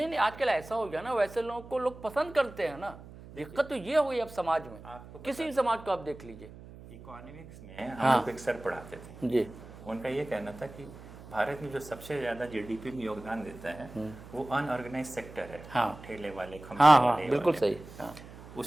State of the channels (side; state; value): right; noise; hum, 17 dB below the sound